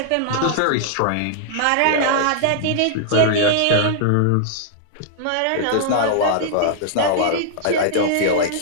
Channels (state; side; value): different; both; correlation -0.01